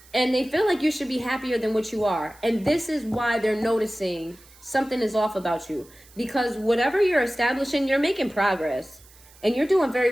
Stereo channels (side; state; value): right; noise; hiss, 25 dB below the sound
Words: And they feel like you should be happier than what you are. And this is why they're noticing something is off about you. Because whatever you're establishing, you're making progress. And you're doing